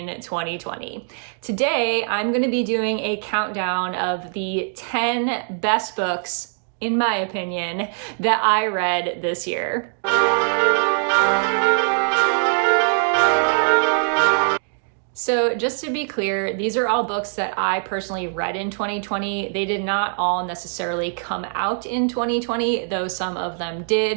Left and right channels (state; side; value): silent; left; 61 dB below the other